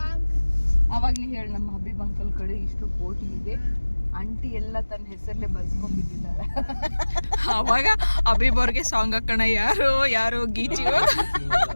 ಅವಾಗ ನೀ ಹೇಳಿ, ನಮ್ಮ ಹಬೀಬ್ ಅಂಕಲ್ ಕಡೆ ಇಷ್ಟು ಕೋಟಿ ಇದೆ, ಆಂಟಿ ಎಲ್ಲ ತನ್ನ ಹೆಸರಲ್ಲೇ ಬರ್ಸ್ಕೊಂಡ್ಬಿಟ್ಟಿದ್ದಾಳೆ. ಅವಾಗ ಹಬೀಬ್ ಅವ್ರಿಗೆ ಸಾಂಗ್ ಹಾಕೋಣ, ಯಾರು ಗೀಚಿ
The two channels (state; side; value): inverted; both; correlation -1.00